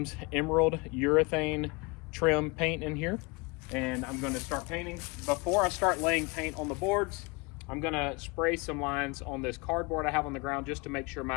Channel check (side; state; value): right; quieter; 27.8 dB